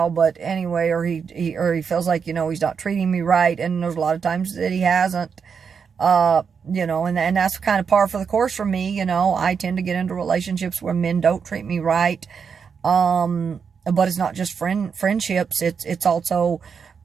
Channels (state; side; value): quieter; left; 6.3 dB